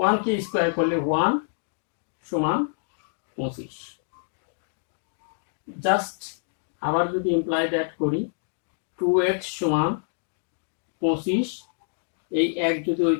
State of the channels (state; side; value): silent; right; digital silence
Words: K square করলে 1 সমান 25। জাস্ট আবার যদি ইমপ্লাই দ্যাট করি, 2x সমান 25, এই এক যদি ওই